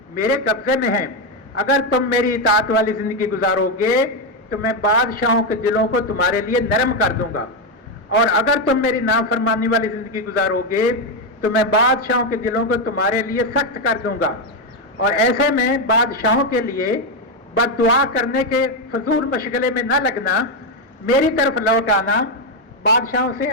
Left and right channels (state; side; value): normal; both; correlation 0.06